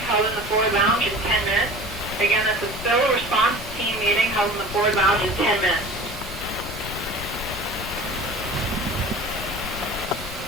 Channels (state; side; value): noise; left; rumble, 12 dB below the sound